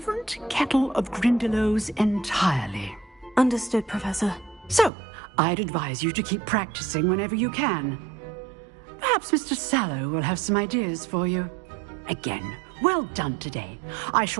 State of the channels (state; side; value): drops out; left; at 4.9 s